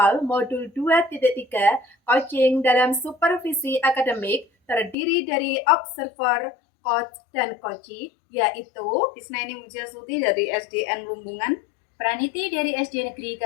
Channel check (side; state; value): right; drops out; at 5.0 s